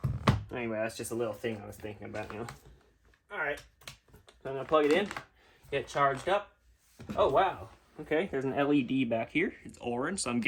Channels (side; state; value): both; identical; correlation 1.00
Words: Anyway, that's just a little thing I was thinking about, you know. Alright, so I'm going to plug it in, get it charged up. Oh, wow. Okay, there's an LED back here. It's orange, so I'm